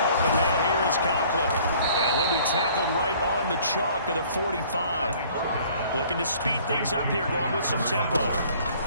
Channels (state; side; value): inverted; both; correlation -0.55